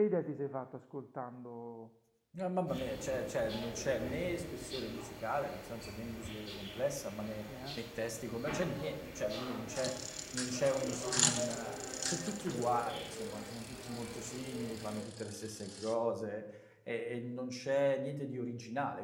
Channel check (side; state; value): both; identical; correlation 1.00